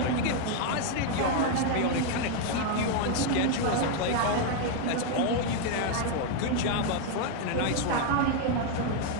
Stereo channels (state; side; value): different; both; correlation 0.01